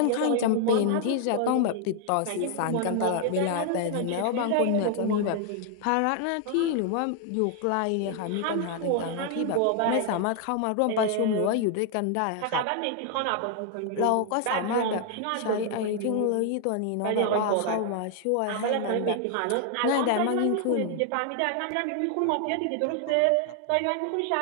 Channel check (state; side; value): different; both; correlation 0.00